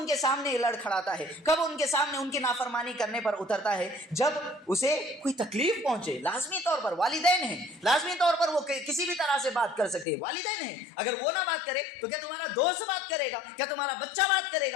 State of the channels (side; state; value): right; drops out; at 10.1 s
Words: کے سامنے لڑ کھڑاتا ہے؟ کب ان کے سامنے ان کی نافرمانی کرنے پر اترتا ہے؟ جب اسے کوئی تکلیف پہنچے۔ لازمی طور پر والدین ہیں، لازمی طور پر وہ کسی بھی طرح سے بات کر سکتے ہیں، والدین ہیں، اگر وہ نہ بات کرے تو کیا تمہارا دوست بات کرے گا؟ کیا تمہارا بچہ بات کرے